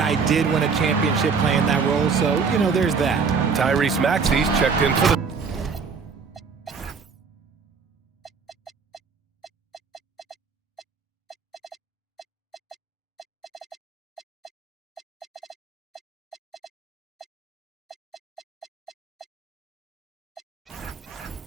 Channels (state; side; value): quieter; left; 5.4 dB